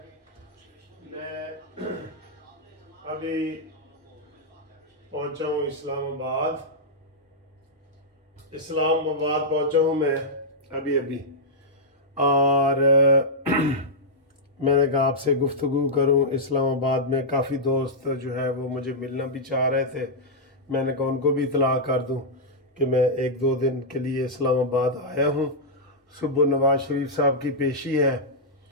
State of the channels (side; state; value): both; normal; correlation -0.07